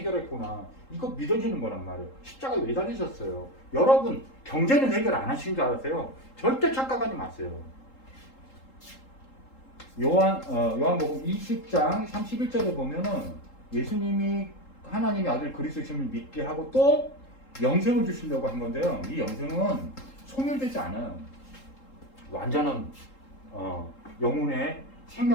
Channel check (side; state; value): right; late; 3.8 ms